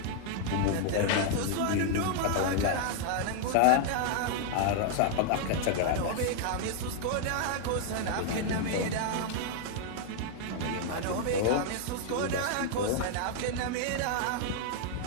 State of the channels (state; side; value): different; both; correlation 0.00